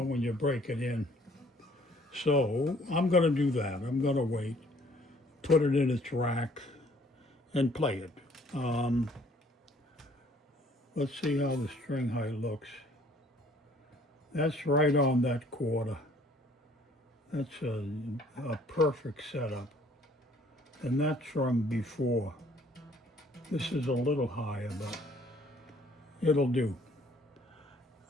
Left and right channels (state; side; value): normal; both; correlation 0.59